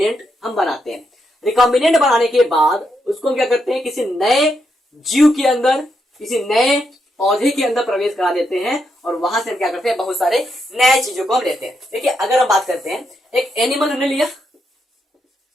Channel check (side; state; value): both; normal; correlation 0.81